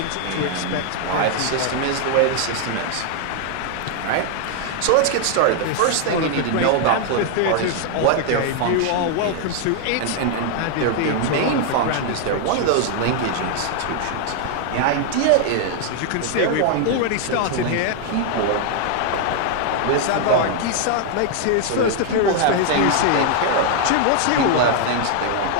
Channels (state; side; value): different; both; correlation 0.00